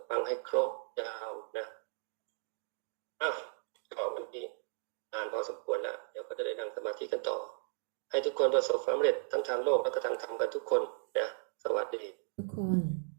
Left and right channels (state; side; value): silent; left; 54 dB below the other